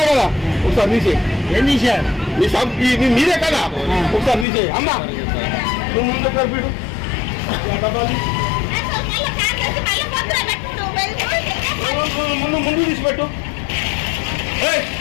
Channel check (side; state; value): right; drops out; at 4.5 s